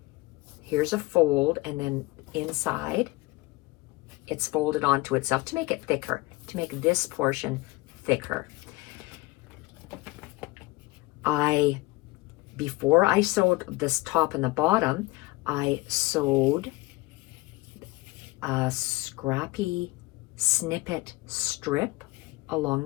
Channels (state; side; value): quieter; right; 21.6 dB